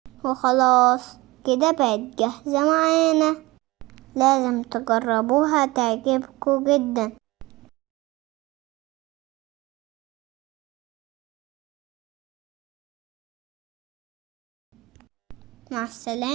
وخلاص كده بقت جاهزة معانا، لازم تجربوها تعجبكم جدا. مع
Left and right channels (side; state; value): left; quieter; 20.9 dB